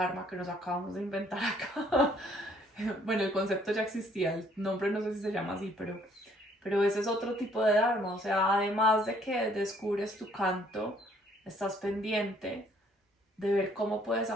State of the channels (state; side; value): normal; both; correlation 0.63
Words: que nos acabamos de inventar acá. Bueno, el concepto ya existía, el nombre no sé si se llama así, pero ese es otro tipo de Dharma. O sea, además de que descubres tu canto, estás pendiente de ver cómo puedes